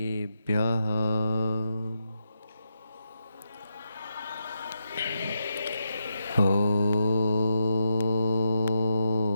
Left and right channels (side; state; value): both; inverted; correlation -0.84